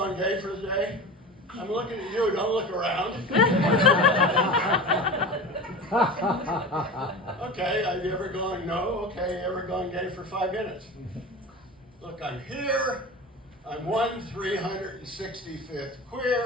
gay for the day? I'm looking at you, don't look around. Okay, have you ever gone no? Okay, ever gone gay for 5 minutes? Look, I'm here. I'm 1/365th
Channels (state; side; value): normal; both; correlation 0.31